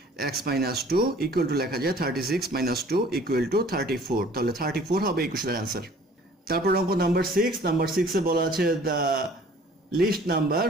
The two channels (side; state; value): both; normal; correlation 0.52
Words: x minus 2 equal to লেখা যায় 36 minus 2 equal to 34, তাহলে 34 হবে এই কোশ্চেনের অ্যান্সার। তারপর অঙ্ক নাম্বার 6 বলা আছে the least number